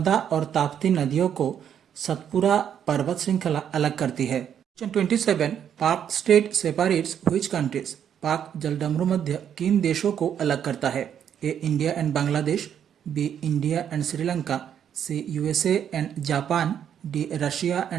और ताप्ती नदियों को सतपुरा पर्वत श्रृंखला अलग करती है। क्वेश्चन 27, पाक स्टेट सेपरेट्स व्हिच कंट्रीज। पाक जलडमरू मध्य किन देशों को अलग करता है? A India and Bangladesh, B India and Sri Lanka, C USA and Japan, D Russia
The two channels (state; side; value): quieter; left; 8.9 dB